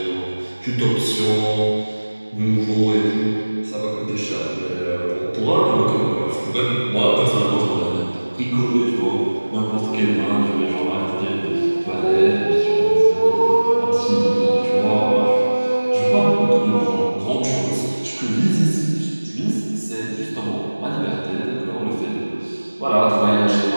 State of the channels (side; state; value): both; inverted; correlation -1.00